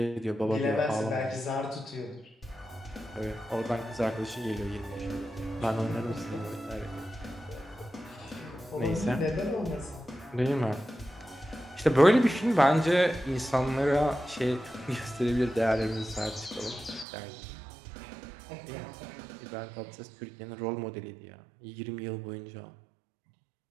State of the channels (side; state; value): left; drops out; at 17.1 s